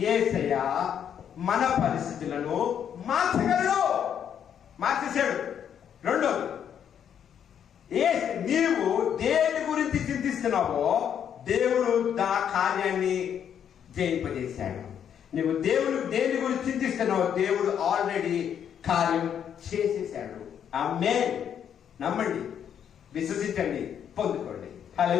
యేసయ్య మన పరిస్థితులను మార్చగలడు, మార్చేశాడు. రెండోది, నీవు దేని గురించి చింతిస్తున్నావో దేవుడు ఆ కార్యాన్ని జయింపజేశాడు. నువ్వు దేని గురించి చింతిస్తున్నావో దేవుడు ఆల్రెడీ కార్యం చేసేసాడు. ఆమేన్. నమ్మండి, విశ్వసించండి, పొందుకోండి.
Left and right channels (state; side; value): quieter; right; 8.8 dB